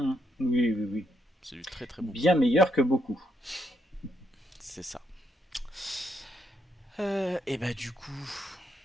oui, oui. c'est du très très bon Bien boulot. meilleur que beaucoup. C'est ça. Et bah du coup,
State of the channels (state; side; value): normal; both; correlation 0.77